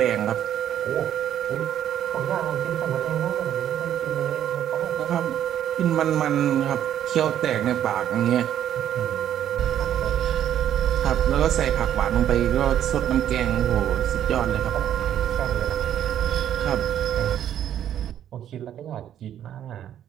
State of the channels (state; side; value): quieter; left; 10.6 dB